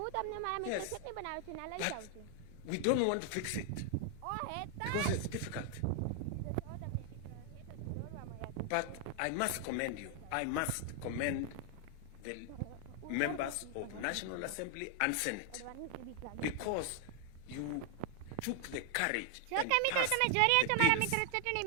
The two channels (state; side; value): different; both; correlation 0.00